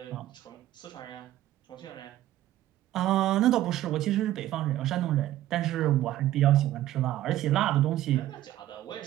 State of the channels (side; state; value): left; quieter; 13.9 dB